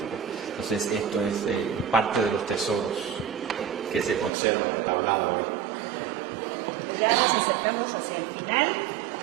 Entonces esto es parte de los tesoros que se conservan de tablada hoy. Pues ya nos acercamos hacia el final,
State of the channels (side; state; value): left; drops out; at 4.3 s